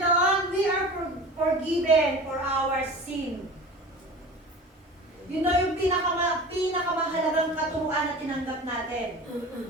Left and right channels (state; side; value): normal; both; correlation 0.37